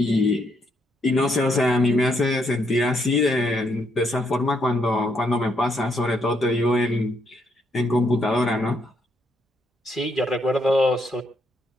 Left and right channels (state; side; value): normal; both; correlation 0.75